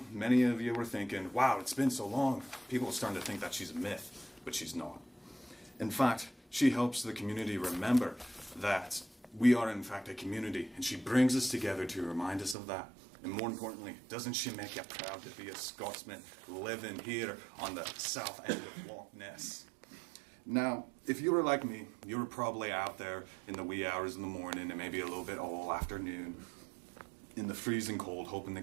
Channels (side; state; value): left; drops out; at 12.6 s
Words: many of you were thinking, wow, it's been so long. People are starting to think that she's a myth, but she's not. In fact, she helps the community remember that we are in fact a community, and she brings us together to remind us of that. And more importantly, doesn't she make you proud to be a Scotsman living here on the south end of Loch Ness? Now, if you were like me, you were probably out there in the wee hours in the morning and maybe a little bit all afternoon in the freezing cold, hoping to